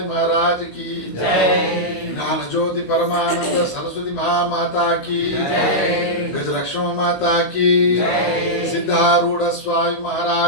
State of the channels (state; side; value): late; right; 16 ms